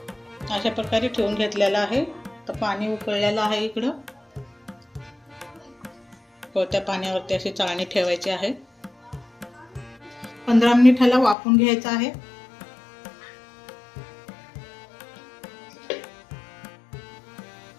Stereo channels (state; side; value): drops out; right; at 11.4 s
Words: अशा प्रकारे ठेवून घेतलेला आहे। तर पाणी उकळलेलं आहे इकडं, त्या पाण्यावरती अशी चाळणी ठेवायची आहे। 15 मिनिटाला वाफवून घ्यायचं आहे।